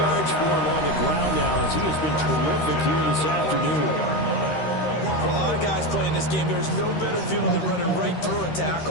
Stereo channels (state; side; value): late; right; 13 ms